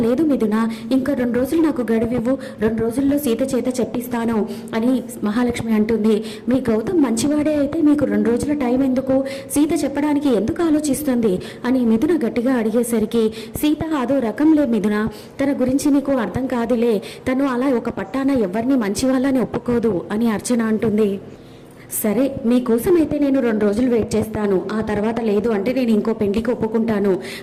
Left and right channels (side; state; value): both; identical; correlation 1.00